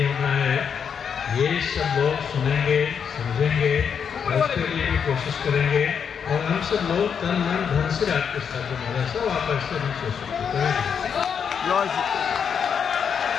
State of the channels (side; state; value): right; quieter; 7.1 dB